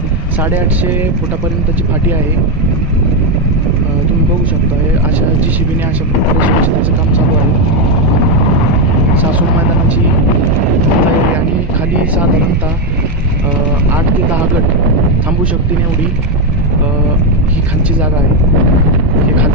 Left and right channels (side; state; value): both; normal; correlation 0.06